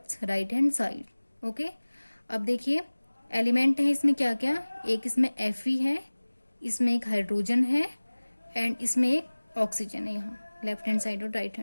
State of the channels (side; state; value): both; inverted; correlation -1.00